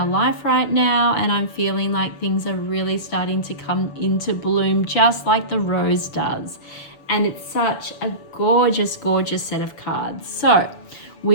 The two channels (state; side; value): late; right; 6.8 ms